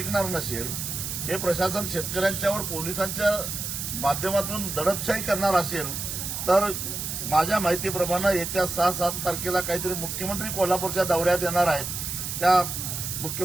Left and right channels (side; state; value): right; noise; hiss, 5 dB below the sound